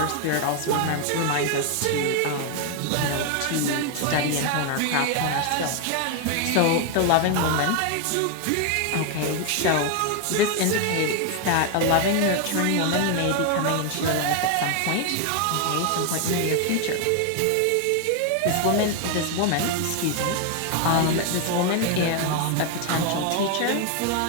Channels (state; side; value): different; both; correlation 0.01